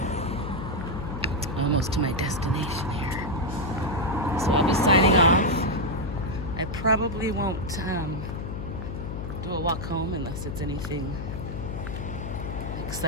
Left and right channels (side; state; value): left; noise; hum, 6 dB below the sound